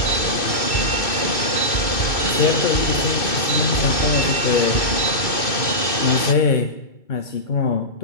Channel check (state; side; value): late; right; 2.5 ms